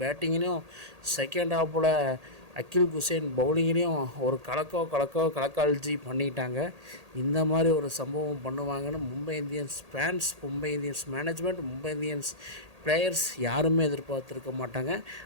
பேட்டிங்லேயும் செகண்ட் ஹாஃபில் அகில் குசேன் பவுலிங்லேயும் ஒரு கலக்கால்ஜி பண்ணிட்டாங்க. இந்த மாதிரி ஒரு சம்பவம் பண்ணுவாங்கன்னு Mumbai Indians fans, Mumbai Indians management, Mumbai Indians players யாருமே எதிர்பார்த்துருக்க மாட்டாங்க.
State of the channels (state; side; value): late; left; 1.8 ms